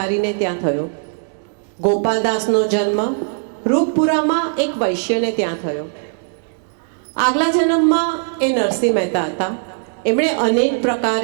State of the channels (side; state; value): left; silent; 67 dB below the other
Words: ત્યાં થયો. ગોપાલદાસનો જન્મ રૂપપુરામાં એક વૈશ્યને ત્યાં થયો. આગલા જન્મમાં એ નરસિંહ મહેતા હતા. એમણે અનેક